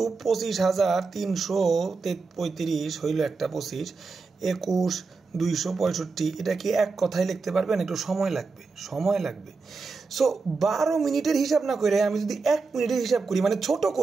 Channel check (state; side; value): quieter; left; 4.4 dB